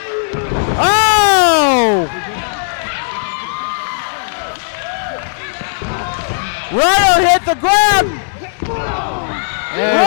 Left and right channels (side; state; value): right; silent; digital silence